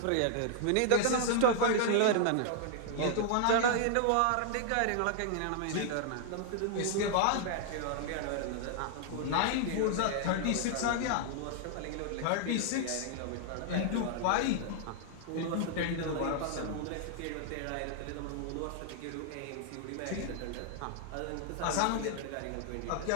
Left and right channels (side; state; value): both; different; correlation 0.00